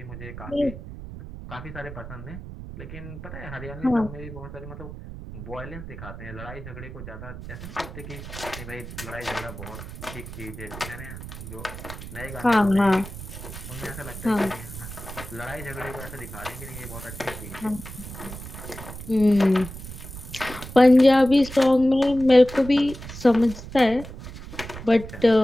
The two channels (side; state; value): right; noise; rumble, 11 dB below the sound